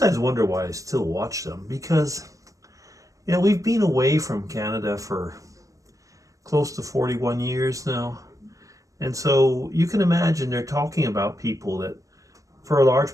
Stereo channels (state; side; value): late; left; 0.16 ms